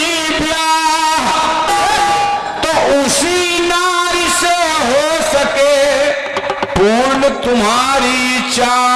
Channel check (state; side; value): identical; both; correlation 1.00